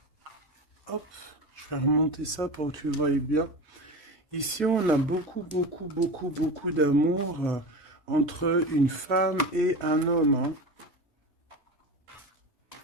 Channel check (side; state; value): both; normal; correlation 0.27